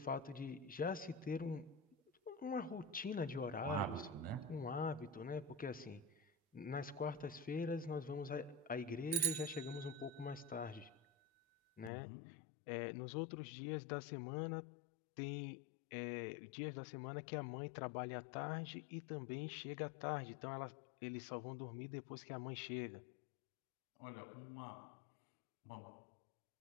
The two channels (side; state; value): right; drops out; at 11.9 s